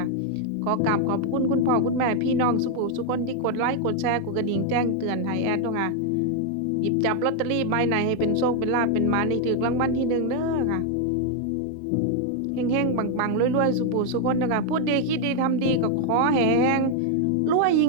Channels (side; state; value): both; different; correlation 0.00